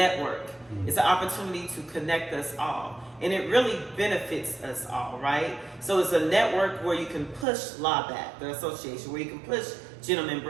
It's an opportunity to connect us all. And it really benefits us all, right? So it's a network where you can push LABAC, the association, where you can push Gentleman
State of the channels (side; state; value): left; drops out; at 7.5 s